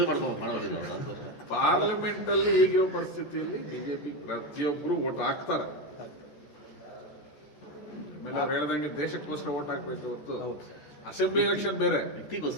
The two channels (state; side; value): late; right; 14 ms